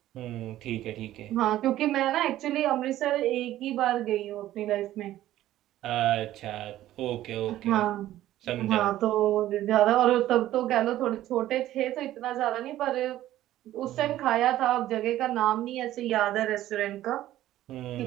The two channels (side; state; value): left; quieter; 13.9 dB